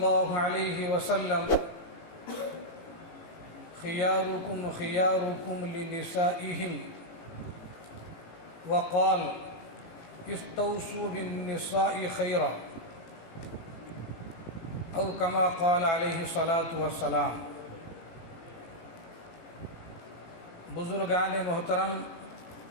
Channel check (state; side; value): late; right; 18 ms